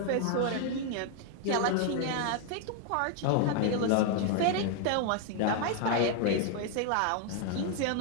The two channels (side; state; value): both; different; correlation 0.00